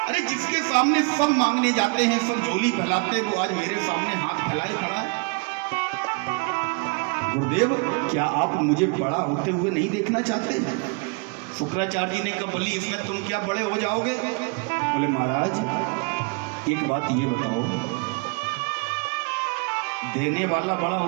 अरे जिसके सामने सब मांगने जाते हैं, सब झोली फैलाते हैं, वो आज मेरे सामने हाथ फैलाए खड़ा है। गुरुदेव, क्या आप मुझे बड़ा होते हुए नहीं देखना चाहते? शुक्राचार्य जी ने कहा, बली इसमें तुम क्या बड़े हो जाओगे? बोले महाराज एक बात ये बताओ, देने वाला बड़ा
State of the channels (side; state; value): left; quieter; 32.3 dB